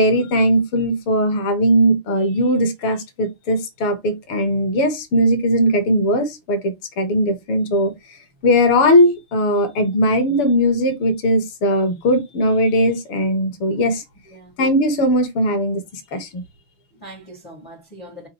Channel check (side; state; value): right; late; 6.9 ms